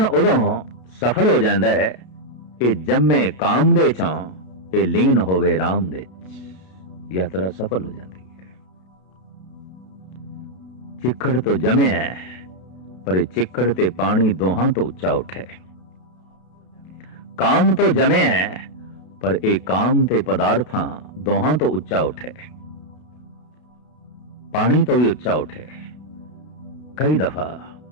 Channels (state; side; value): late; right; 32 ms